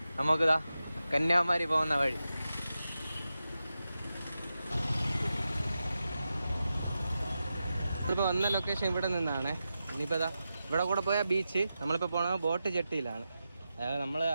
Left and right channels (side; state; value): both; inverted; correlation -0.91